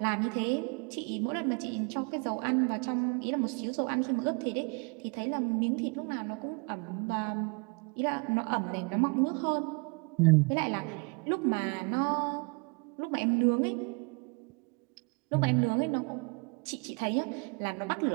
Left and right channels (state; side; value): quieter; left; 32.5 dB